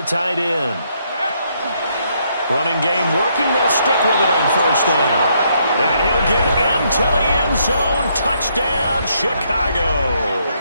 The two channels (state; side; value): inverted; both; correlation -0.73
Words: tight end. Running game working. They'll stick with it on first down. And he'll get into the end zone. Touchdown, Chicago.